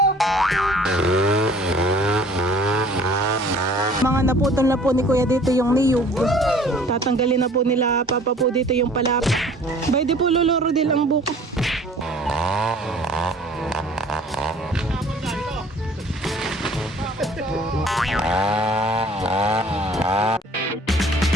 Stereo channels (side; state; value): both; normal; correlation 0.51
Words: Mga naputol na po ni Kuya dito yung niyog. Tatanggalin na po nila Papa po dito yung palapa. Bay di po luluro din ang buko.